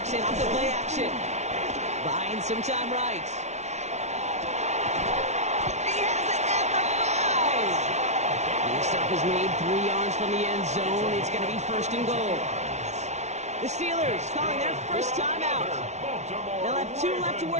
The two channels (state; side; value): late; left; 0.32 ms